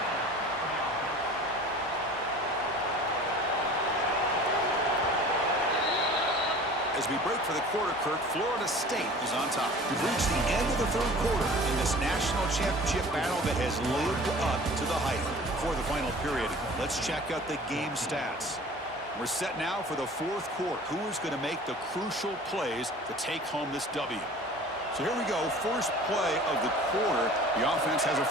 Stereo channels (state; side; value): normal; both; correlation 0.44